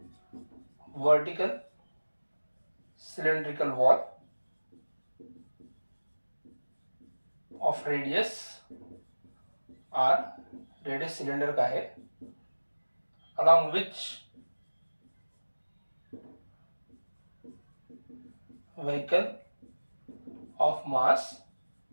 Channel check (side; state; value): both; inverted; correlation -1.00